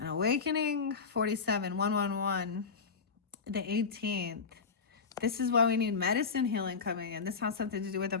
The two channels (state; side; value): quieter; right; 5.2 dB